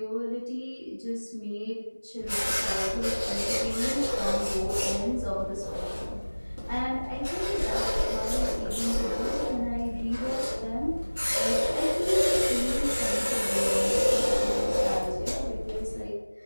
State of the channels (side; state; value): both; inverted; correlation -1.00